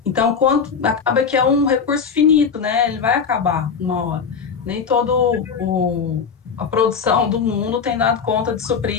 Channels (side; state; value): right; quieter; 6.1 dB